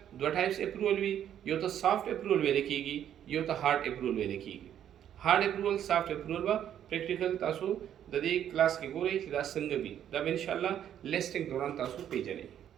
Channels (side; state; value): left; quieter; 10.2 dB